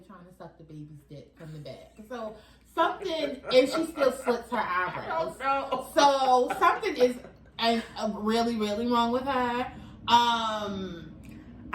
trying to suck the baby's dick from the back. So something, and she still slits her eyebrows. So something is really, really wrong with her.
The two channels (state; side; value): identical; both; correlation 1.00